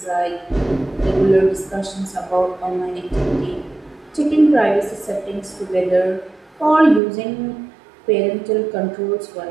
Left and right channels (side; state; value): left; drops out; at 7.0 s